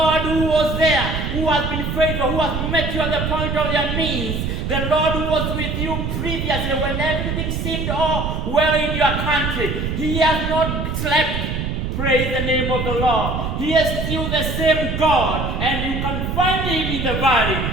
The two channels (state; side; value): noise; right; rumble, 2 dB below the sound